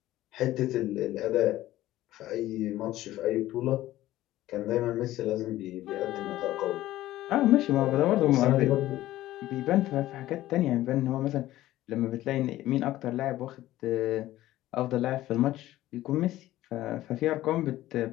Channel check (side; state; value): right; quieter; 15.2 dB